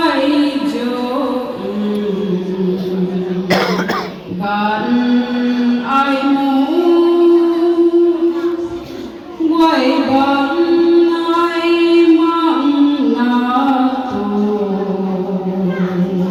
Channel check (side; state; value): both; identical; correlation 1.00